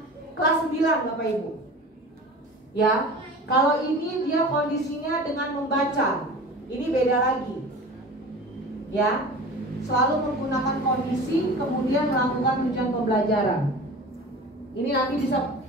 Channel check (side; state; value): both; normal; correlation 0.37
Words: Kelas 9 Bapak Ibu. Ya, kalau ini dia kondisinya dengan membaca. Ini beda lagi. Ya, selalu menggunakan kondisi kemudian melakukan tujuan pembelajaran. Ini nanti bisa,